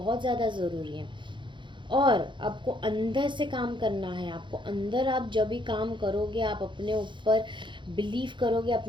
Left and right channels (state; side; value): late; left; 0.23 ms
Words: ज़्यादा ज़रूरी है. और आपको अंदर से काम करना है. आपको अंदर, आप जब भी काम करोगे, आप अपने ऊपर बिलीव करोगे,